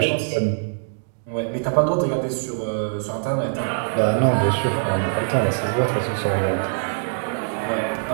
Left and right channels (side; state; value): left; silent; digital silence